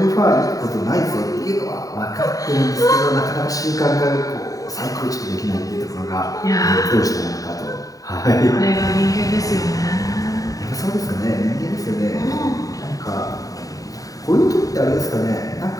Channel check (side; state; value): right; late; 0.17 ms